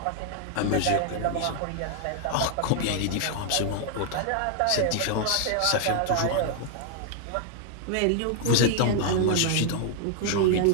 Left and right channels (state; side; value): different; both; correlation 0.00